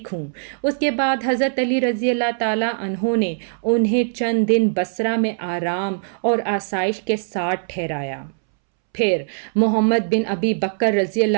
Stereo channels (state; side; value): silent; left; 65 dB below the other